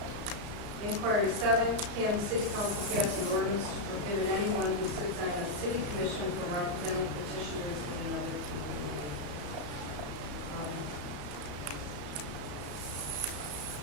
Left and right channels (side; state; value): left; late; 34 ms